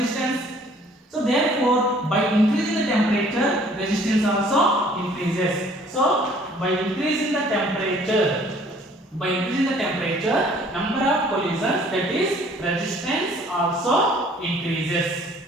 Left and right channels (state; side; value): normal; both; correlation 0.56